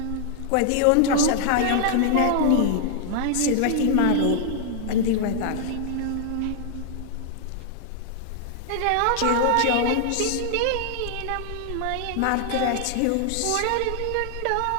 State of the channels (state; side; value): different; both; correlation -0.01